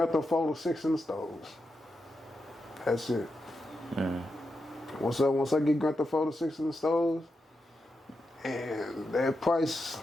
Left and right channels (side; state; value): both; normal; correlation 0.87